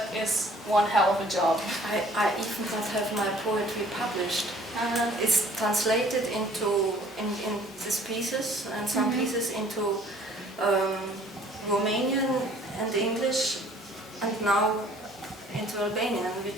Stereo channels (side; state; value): both; normal; correlation 0.55